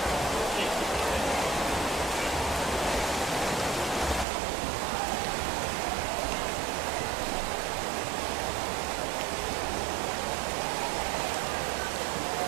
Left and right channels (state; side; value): drops out; left; at 4.2 s